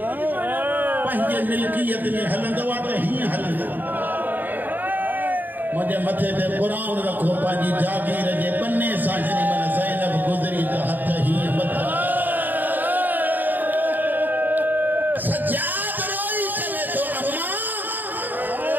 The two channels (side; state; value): left; late; 0.088 ms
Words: पंहिंजे मिल्कियत में हलंदो आहे त हीअं हलंदो? मुझे मथे ते कुरान रखो पंहिंजी जागीर जे बन्ने सां। जेॾी महिल ज़ैनब गुज़री त हथ हीअं मथा। सजाद रोई चवे थो अम्मा